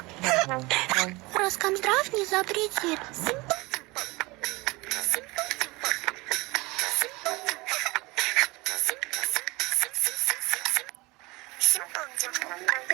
Роскомздрав не запретит.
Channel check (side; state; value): left; quieter; 23.4 dB